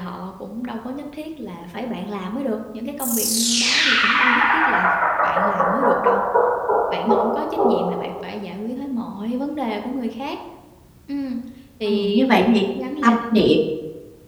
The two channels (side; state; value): both; identical; correlation 1.00